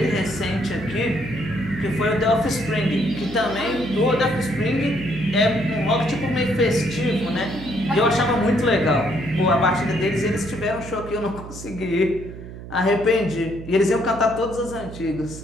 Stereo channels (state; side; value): noise; right; hum, 13 dB below the sound